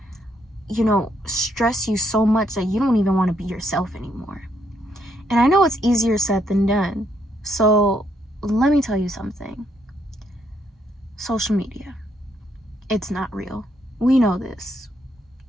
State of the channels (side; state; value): both; normal; correlation 0.74